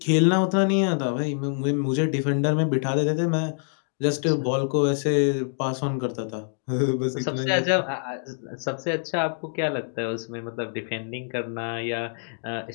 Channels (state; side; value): silent; right; digital silence